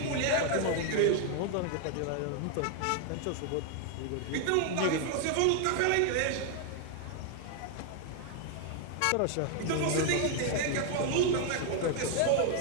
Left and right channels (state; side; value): different; both; correlation 0.00